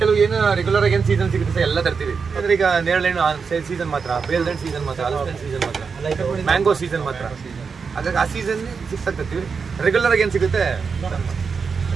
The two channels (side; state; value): left; quieter; 5.5 dB